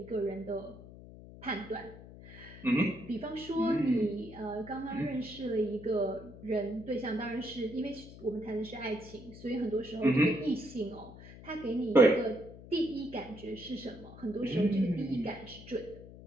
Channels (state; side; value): noise; left; hum, 16 dB below the sound